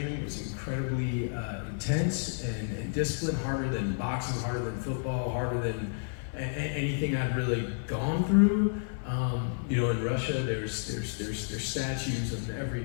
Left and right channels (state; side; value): silent; right; digital silence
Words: It was incredibly intense and disciplined, harder than boxing, harder than football, harder than anything I'd really gone through. You know, in Russia, there's statues on every